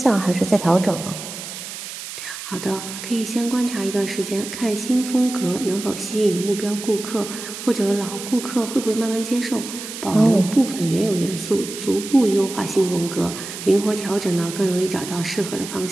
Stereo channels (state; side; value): noise; right; hiss, 10 dB below the sound